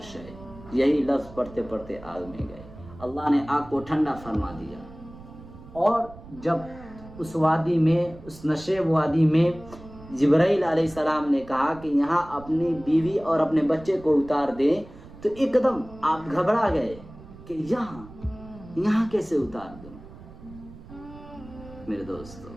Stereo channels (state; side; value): noise; right; rumble, 18 dB below the sound